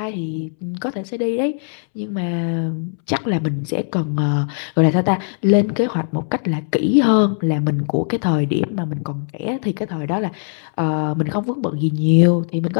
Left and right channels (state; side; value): silent; right; 66 dB below the other